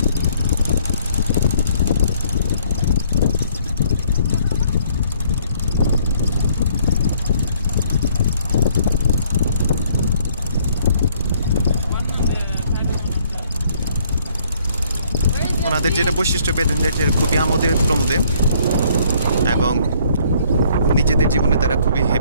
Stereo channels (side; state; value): both; inverted; correlation -0.63